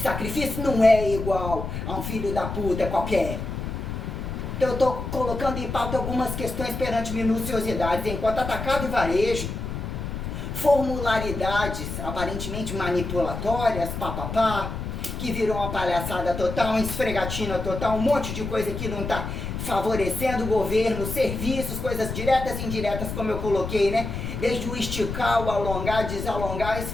sacrifício, não é igual a um filho da puta qualquer. Então eu estou colocando em pauta algumas questões perante minuciosidades, enquanto atacado e varejo, formularidades aparentemente manipulatórias, que viram uma palhaçada total, uma esfregatina total, um monte de coisa que não está favorecendo o governo, serviços, coisas diretas e indiretas, como eu coloquei, né? Desde o esticar, o alongar, desalongar, a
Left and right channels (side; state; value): left; noise; rumble, 5 dB below the sound